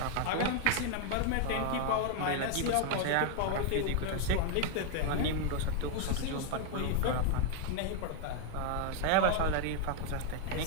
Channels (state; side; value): different; both; correlation 0.01